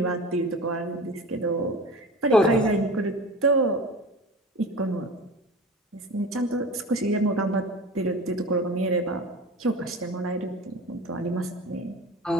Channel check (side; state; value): both; normal; correlation 0.34